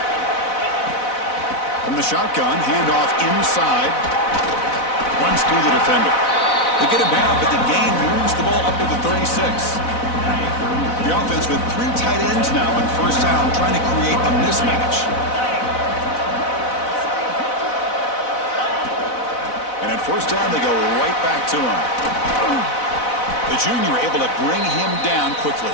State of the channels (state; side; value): late; right; 4.0 ms